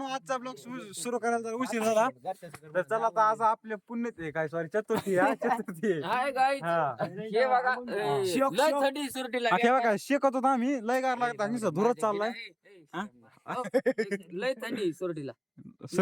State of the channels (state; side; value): identical; both; correlation 1.00